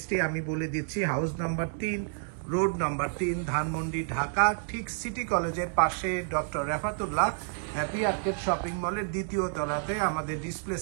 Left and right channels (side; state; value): left; silent; digital silence